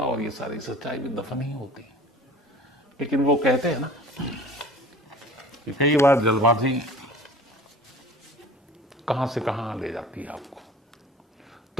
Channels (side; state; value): both; normal; correlation 0.44